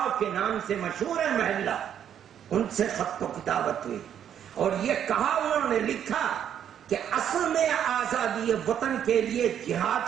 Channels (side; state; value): left; quieter; 9.4 dB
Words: کے نام سے مشہور ہے محلہ، ان سے خط و کتابت ہوئی اور یہ کہا انہوں نے لکھا کہ اصل میں آزادی وطن کے لیے